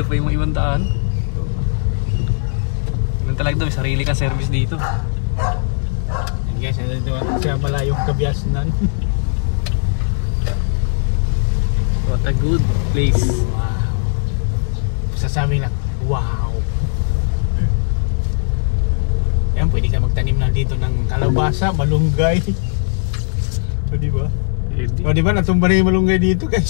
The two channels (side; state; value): right; silent; digital silence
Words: pa yung mga ibang daan. Ganun talaga ito, may sarili kang service dito. Yan guys, ano dito sa malayong Kabiasnan. What a good place. Sasabi lang, wow. Yan, pwede ka magtanim na dito ng kalabasa, malunggay. So, di ba? O, di ba? Natumba na yung malunggay dito,